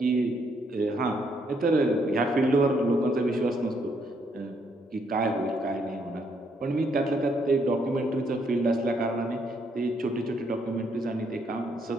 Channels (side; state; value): both; normal; correlation 0.72